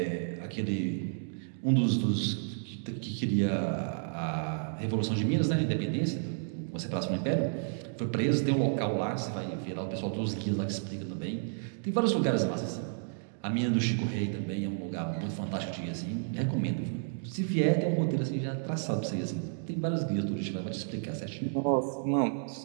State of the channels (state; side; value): silent; left; digital silence